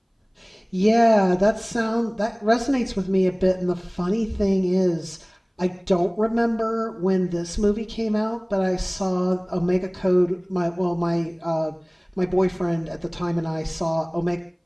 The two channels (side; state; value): both; identical; correlation 1.00